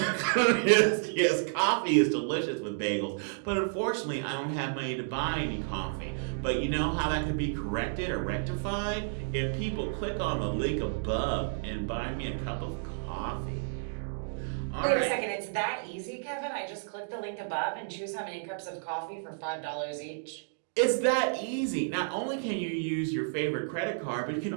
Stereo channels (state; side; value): silent; left; digital silence